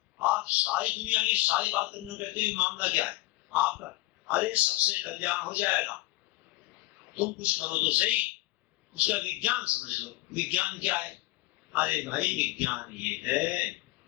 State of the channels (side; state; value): right; quieter; 19.9 dB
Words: आप सारी दुनिया की सारी बात करने कहते हैं, मामला क्या है आपका? अरे सबसे कल्याण हो जाएगा, तुम कुछ करो तो सही, उसका विज्ञान समझ लो। विज्ञान क्या है? अरे भाई विज्ञान ये है,